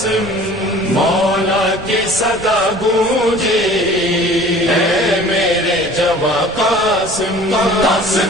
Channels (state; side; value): noise; right; rumble, 16 dB below the sound